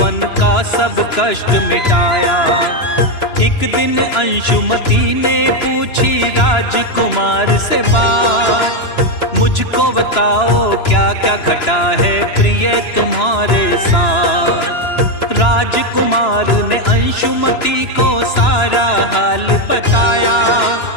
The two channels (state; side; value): late; right; 2.9 ms